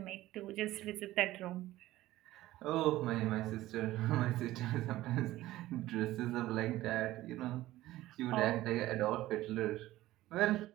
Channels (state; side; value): quieter; left; 16.0 dB